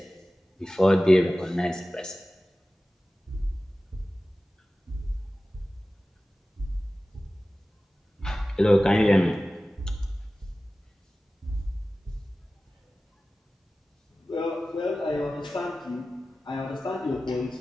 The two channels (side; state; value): both; normal; correlation 0.96